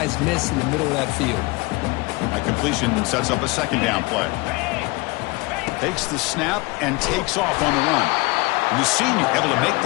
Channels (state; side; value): quieter; right; 24.5 dB